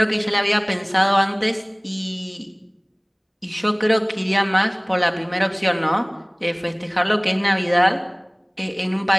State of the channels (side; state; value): both; identical; correlation 1.00